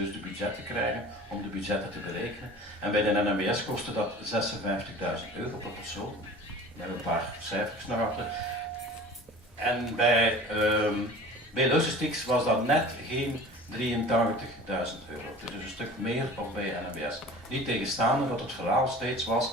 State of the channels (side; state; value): both; normal; correlation 0.41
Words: de budgetten krijgen, om de budgetten te berekenen. En bij de NMBS kostte dat 56.000 euro per persoon. We hebben een paar cijfers naar achter. En bij Logistics was dat net geen 83.000 euro. Het is dus een stuk meer dan bij NMBS. Niet tegenstaande dat het verhaal steeds